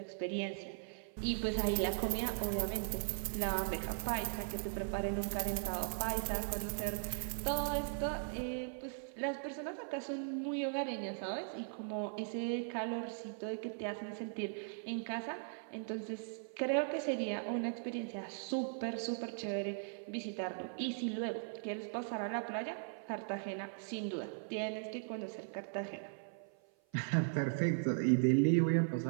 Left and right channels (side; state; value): left; silent; 52 dB below the other